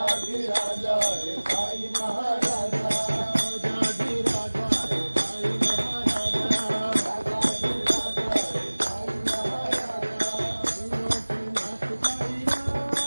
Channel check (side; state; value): both; inverted; correlation -1.00